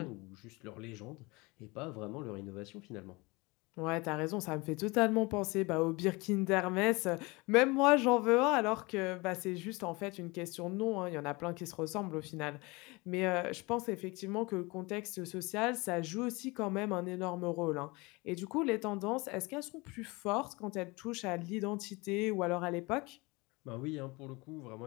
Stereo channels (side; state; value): right; quieter; 25.1 dB